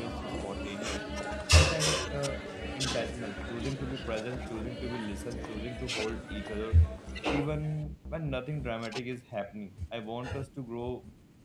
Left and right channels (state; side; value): identical; both; correlation 1.00